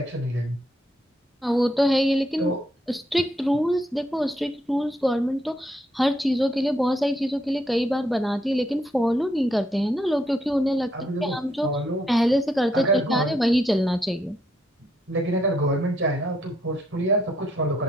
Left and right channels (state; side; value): normal; both; correlation 0.75